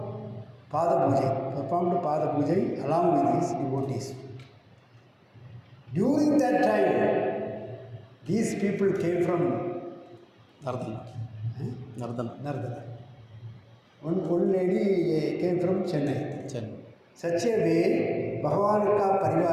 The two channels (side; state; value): both; identical; correlation 1.00